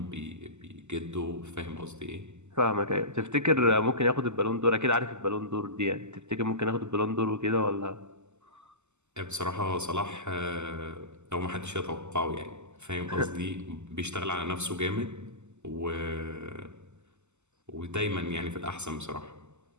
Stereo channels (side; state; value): left; late; 0.83 ms